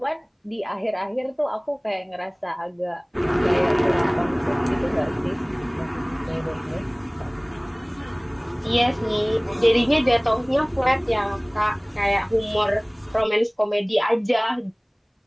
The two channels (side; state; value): both; identical; correlation 1.00